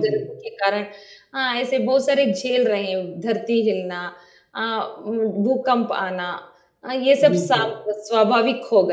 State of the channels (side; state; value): both; identical; correlation 1.00